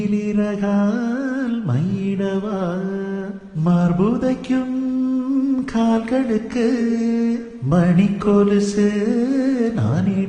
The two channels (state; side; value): identical; both; correlation 1.00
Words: மயிடவா மார்புதைக்கும் கால்களுக்கு மணிக்கொலுசு